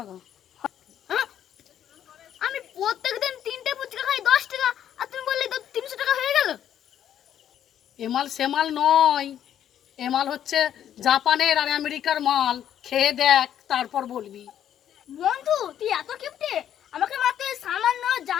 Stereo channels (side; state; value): right; quieter; 10.3 dB